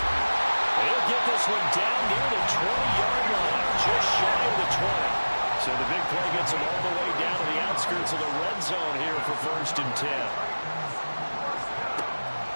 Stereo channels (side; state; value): both; inverted; correlation -1.00